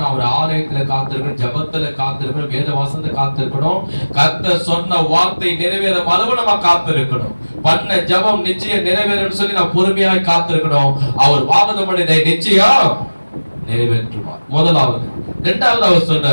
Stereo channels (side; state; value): both; inverted; correlation -1.00